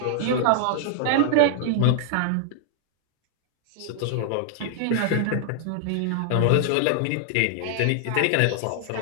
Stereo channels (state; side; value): different; both; correlation 0.00